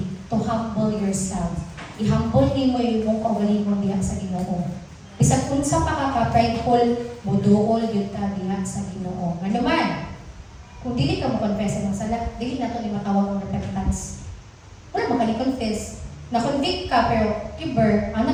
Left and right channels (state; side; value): identical; both; correlation 1.00